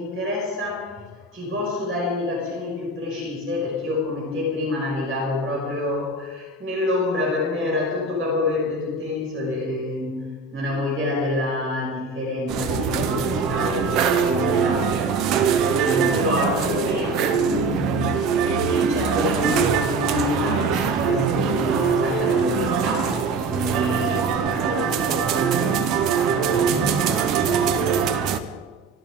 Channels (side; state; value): left; quieter; 3.2 dB